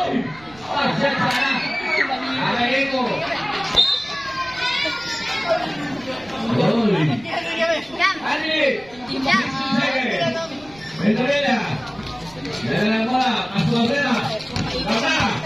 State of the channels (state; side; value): noise; right; rumble, 23 dB below the sound